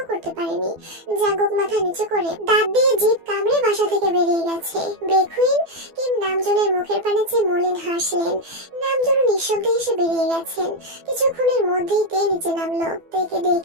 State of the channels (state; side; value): late; left; 12 ms